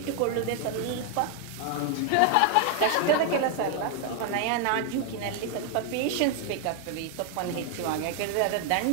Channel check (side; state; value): both; different; correlation 0.00